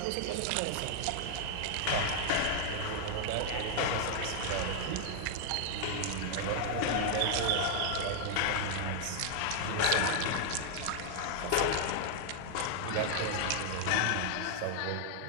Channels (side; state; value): both; different; correlation 0.00